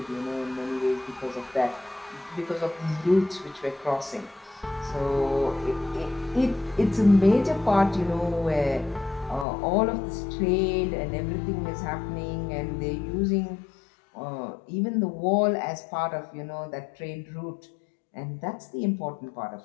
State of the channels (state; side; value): drops out; right; at 9.5 s